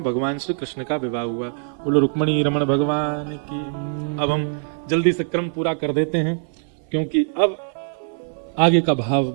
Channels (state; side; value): silent; left; 58 dB below the other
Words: भगवान श्री कृष्ण का विवाह हुआ। बोलो रुक्मिणी रमण भगवान की। अब हम जल्दी से क्रम पूरा कर देते हैं, क्योंकि अब आगे का भाव